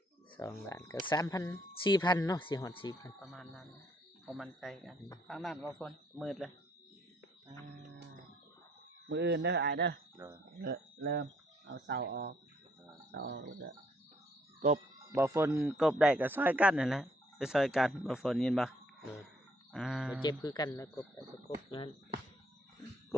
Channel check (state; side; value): normal; both; correlation 0.67